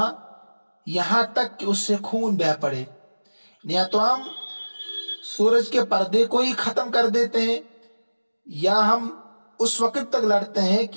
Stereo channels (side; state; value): both; inverted; correlation -1.00